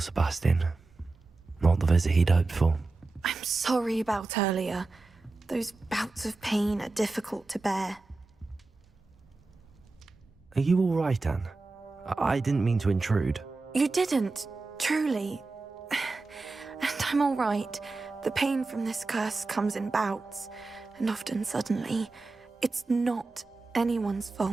Not the visit he'd hoped for. I'm sorry about earlier. Those bouts of pain are difficult to bear. Are you all right, Anne? I didn't mean to intrude. You didn't, truly. And I'm all right. The pain from this curse comes in bouts, and often suddenly. It's not anyone's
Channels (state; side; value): quieter; left; 3.5 dB